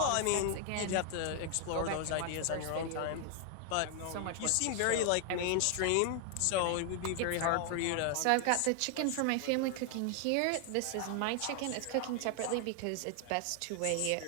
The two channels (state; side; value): different; both; correlation 0.00